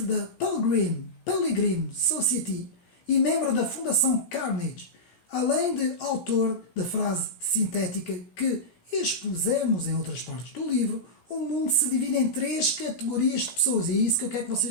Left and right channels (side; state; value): right; late; 17 ms